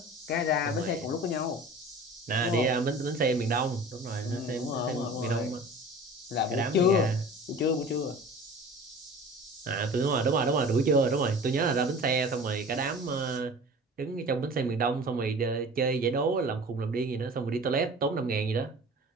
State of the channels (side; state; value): both; normal; correlation 0.41